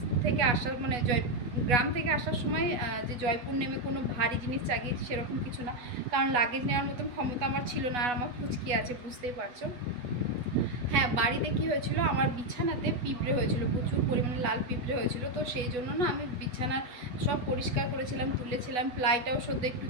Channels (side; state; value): left; late; 8.2 ms